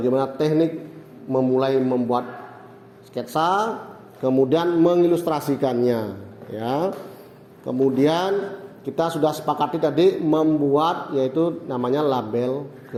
teknik memulai membuat sketsa, kemudian mengilustrasikannya ya. Kemudian kita sudah sepakati tadi membuat yaitu namanya label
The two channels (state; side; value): identical; both; correlation 1.00